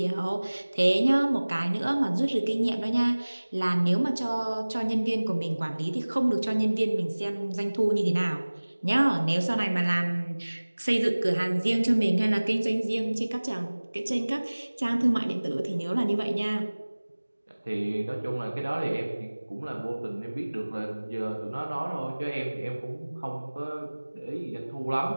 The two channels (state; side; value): inverted; both; correlation -1.00